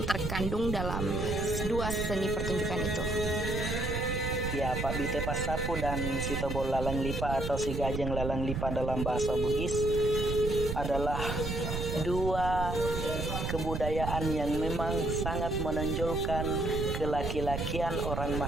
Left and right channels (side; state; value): right; noise; rumble, 3 dB below the sound